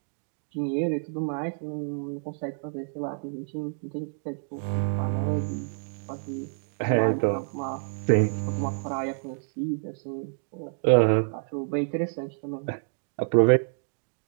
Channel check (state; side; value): silent; left; 59 dB below the other